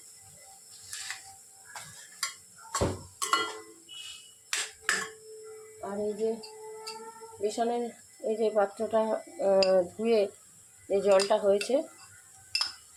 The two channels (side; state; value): both; identical; correlation 1.00